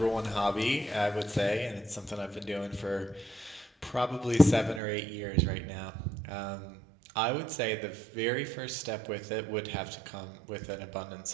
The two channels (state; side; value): drops out; left; at 4.8 s